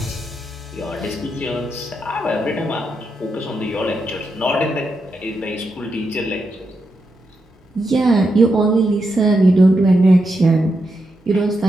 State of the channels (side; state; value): both; normal; correlation 0.84